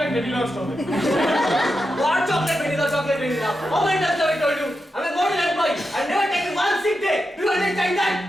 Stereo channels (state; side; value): normal; both; correlation 0.88